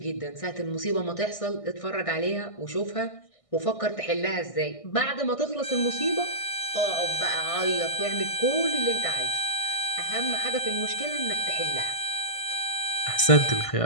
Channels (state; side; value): late; right; 1.6 ms